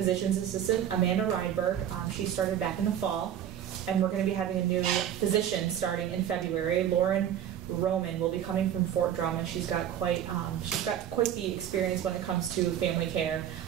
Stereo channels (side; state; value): left; quieter; 10.2 dB